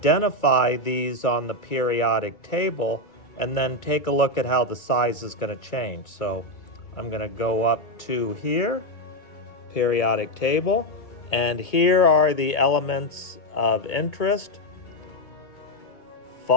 these on the periodic table and then take a look at how the size is going to change. So I'm going to go up to here, periodic table. And here are the elements of interest:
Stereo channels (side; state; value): right; late; 2.3 ms